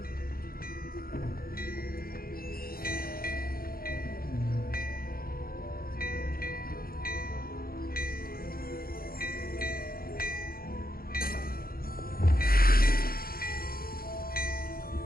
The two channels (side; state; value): right; late; 0.43 ms